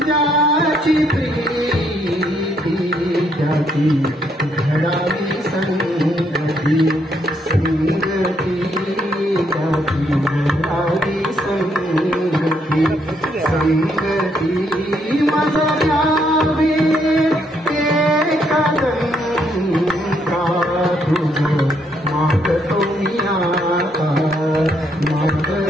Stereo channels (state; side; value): normal; both; correlation 0.73